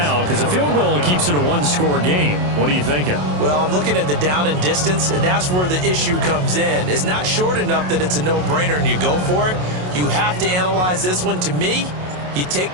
because a field goal keeps it a one-score game. What are you thinking? Well, I'm looking at the down and distance, and that's where the issue comes in. It's not short enough that it's a no-brainer and you go for it. You have to analyze this one. To me, you take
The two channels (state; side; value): late; left; 27 ms